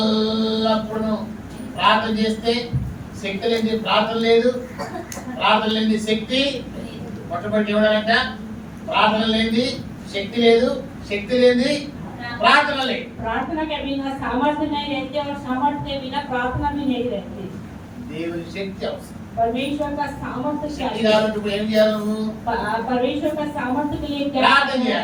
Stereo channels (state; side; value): identical; both; correlation 1.00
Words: ప్రార్థన చేస్తే శక్తి లేని ప్రార్థన లేదు, ప్రార్థన లేని శక్తి మొట్టమొదటి ఇవ్వడాలంట. ప్రార్థన లేని శక్తి లేదు, శక్తి లేని ప్రార్థన లేదు. प्रार्थना के बिना सामर्थ्य नहीं रहती और सामर्थ्य के बिना प्रार्थना भी नहीं रहती। దేవుని శక్తి అవసరం. परमेश्वर का सामर्थ्य శక్తి चाहिए। కావాలంటే ఇప్పుడు ఏం చేయాలి నువ్వు? परमेश्वर का सामर्थ्य के लिए क्या प्रार्थना करना है? किया।